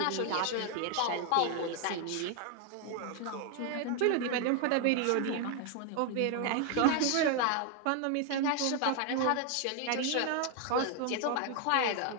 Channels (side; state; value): both; different; correlation 0.00